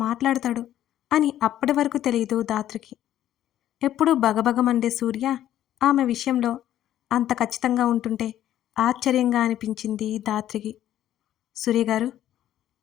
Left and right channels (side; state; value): right; quieter; 12.0 dB